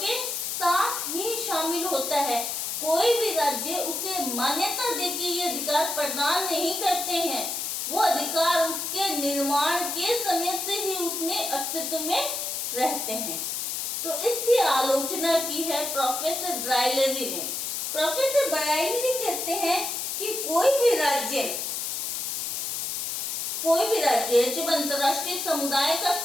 साथ ही शामिल होता है। कोई भी राज्य उसे मान्यता दे के ये अधिकार प्रदान नहीं करते हैं, वो अधिकार उसके निर्माण के समय से ही उसमें अस्तित्व में रहते हैं। तो इसकी आलोचना की है प्रोफेसर ब्राइलरी ने। प्रोफेसर ब्राइलरी कहते हैं कि कोई भी राज्य कोई भी राज्य जब अंतर्राष्ट्रीय समुदाय का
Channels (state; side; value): noise; left; hiss, 3 dB below the sound